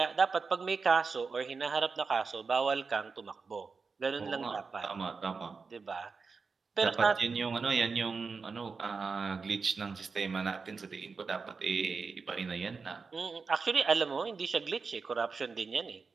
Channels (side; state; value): left; quieter; 4.8 dB